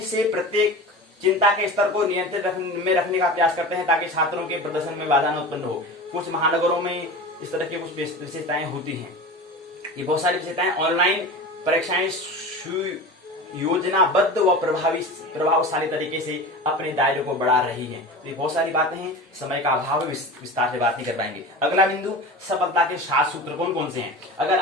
से प्रत्येक चिंता के स्तर को नियंत्रित में रखने का प्रयास करते हैं ताकि छात्रों के प्रदर्शन में बाधा न उत्पन्न हो। कुछ महानगरों में इस तरह की कुछ विशेषताएं होती हैं। ये बहुत सारी विशेषताएं ऑनलाइन परीक्षाएं योजनाबद्ध व प्रभावशाली तरीके से अपने दायरे को बढ़ा रही हैं। तो ये बहुत सारी बातें हैं, समय का अभाव है, विस्तार से बात नहीं कर पाएंगे। अगला बिंदु, सफलता के 7 सूत्र कौन कौन से हैं। अगर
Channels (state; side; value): normal; both; correlation 0.31